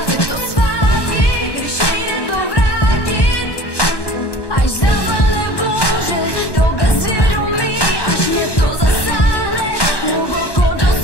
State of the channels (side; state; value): right; late; 1.1 ms